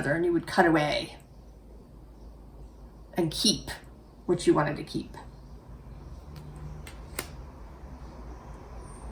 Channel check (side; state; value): both; identical; correlation 1.00